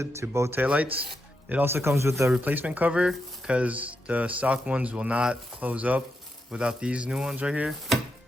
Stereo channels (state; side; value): normal; both; correlation 0.85